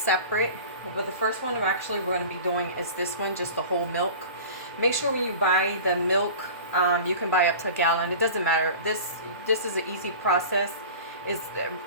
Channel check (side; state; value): both; inverted; correlation -0.38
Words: But the first one we're going to be doing is this one, just the whole milk. Make sure when you buy the milk, you can buy up to a gallon. It doesn't matter. This is an easy process. It's